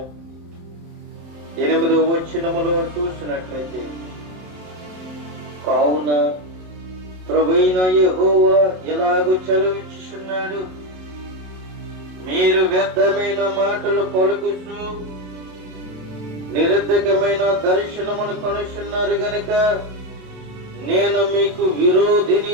8వ వచనములో చూసినట్లయితే, కావున ప్రభువైన యెహోవా ఎలాగూ చలవిచ్చుచున్నాడు, మీరు వ్యర్థమైన మాటలు పలుకుచు నిరర్ధకమైన దర్శనమును కనుచున్నారు గనుక నేను మీకు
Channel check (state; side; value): late; left; 27 ms